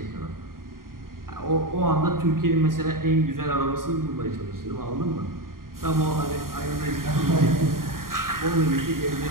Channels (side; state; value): left; late; 0.91 ms